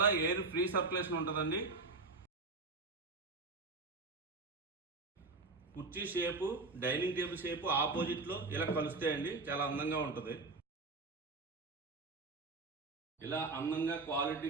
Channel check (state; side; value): quieter; left; 3.7 dB